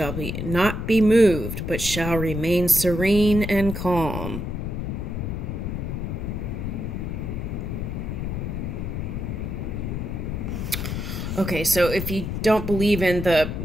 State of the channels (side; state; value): left; noise; rumble, 4 dB below the sound